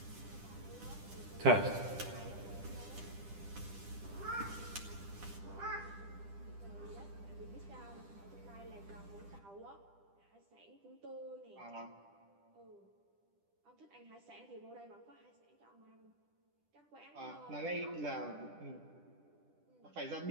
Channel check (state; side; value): late; left; 10 ms